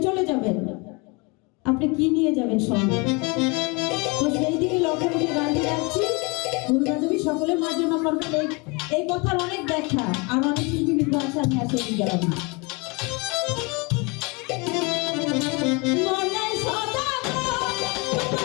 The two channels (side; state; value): right; quieter; 28.9 dB